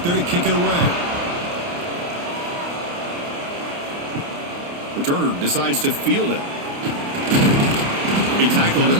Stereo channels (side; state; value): left; late; 29 ms